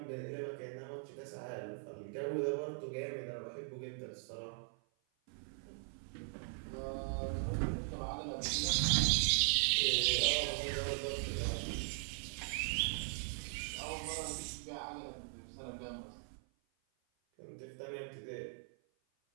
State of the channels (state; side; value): silent; left; 51 dB below the other